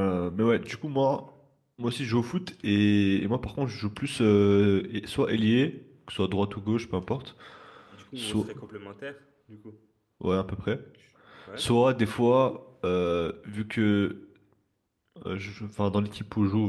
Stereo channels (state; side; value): identical; both; correlation 1.00